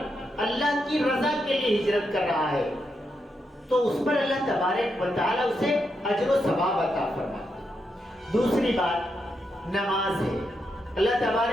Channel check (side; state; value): both; normal; correlation 0.83